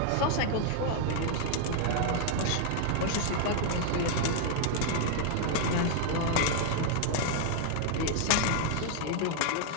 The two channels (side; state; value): both; different; correlation 0.00